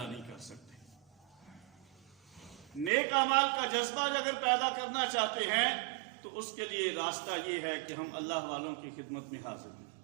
نہیں کر سکتے۔ نیک اعمال کا جذبہ اگر پیدا کرنا چاہتے ہیں تو اس کے لیے راستہ یہ ہے کہ ہم اللہ والوں کی خدمت میں حاضر ہیں۔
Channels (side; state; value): left; drops out; at 2.9 s